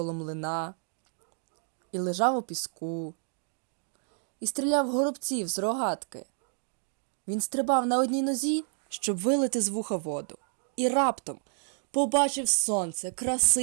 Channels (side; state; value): left; silent; 58 dB below the other